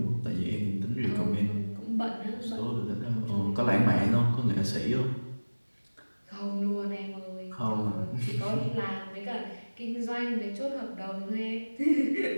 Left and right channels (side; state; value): both; inverted; correlation -1.00